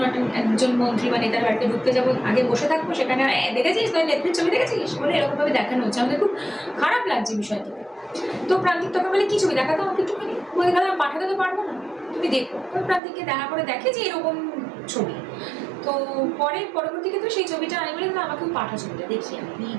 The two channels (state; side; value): drops out; left; at 13.0 s